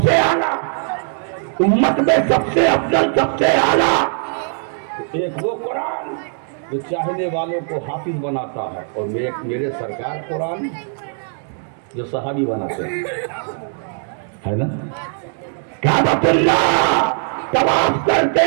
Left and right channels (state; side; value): silent; left; 58 dB below the other